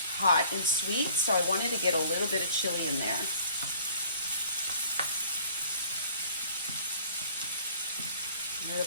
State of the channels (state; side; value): inverted; both; correlation -0.54